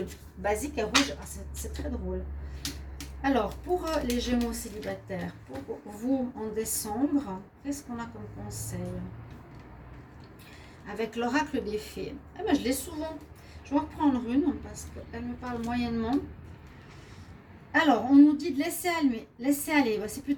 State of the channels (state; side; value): identical; both; correlation 1.00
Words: basique est rouge. Ah, c'est très drôle. Alors, pour les Gémeaux célibataires, pour vous en décembre, qu'est-ce qu'on a comme conseil? Avec l'oracle des fées. Eh ben, je l'ai souvent. Je vais en reprendre une parce qu'elle me parle moyennement. Alors, on nous dit de laisser aller. C'est